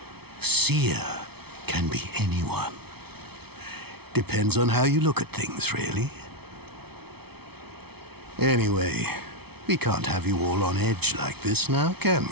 Seer can be anyone. Depends on how you look at things, really. Anyway, we can't have you all on edge like this now, can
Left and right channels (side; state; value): left; late; 0.97 ms